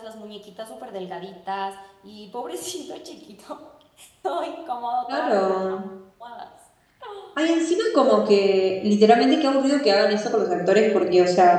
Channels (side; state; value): both; identical; correlation 1.00